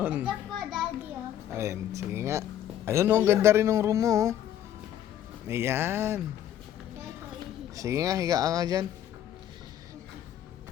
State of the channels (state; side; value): quieter; right; 11.0 dB